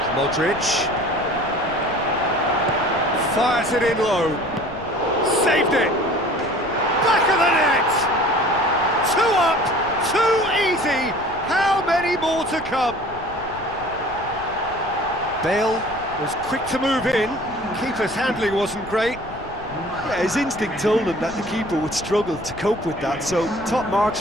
Modric fires it in low. saved it! Back of the net! 2 up, 2 easy! How many more to come? Bale was quick to move in. Keeper's handling wasn't great. Yeah, his instinct told him that the keeper would struggle to cope with that, so top marks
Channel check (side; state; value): left; noise; rumble, 17 dB below the sound